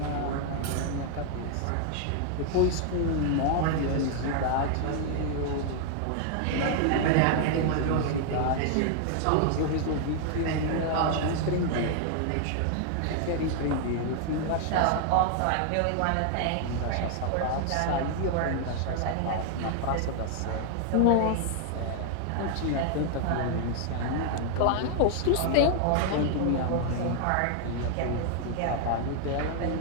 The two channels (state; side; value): different; both; correlation 0.00